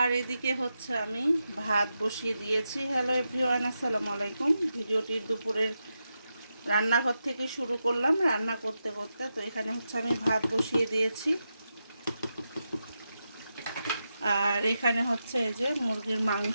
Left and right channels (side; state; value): both; inverted; correlation -0.88